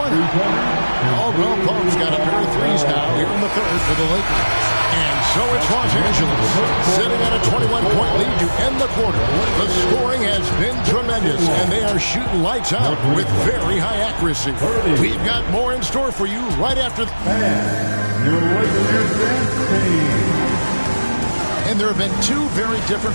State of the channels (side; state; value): both; inverted; correlation -1.00